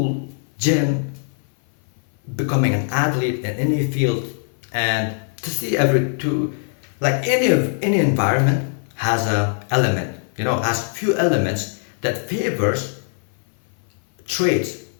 gym, becoming an athlete in any field. And to see every to like any environment has a element, has few elements that favors traits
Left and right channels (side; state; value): right; silent; 57 dB below the other